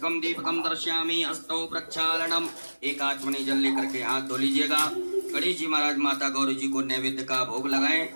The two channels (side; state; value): both; inverted; correlation -1.00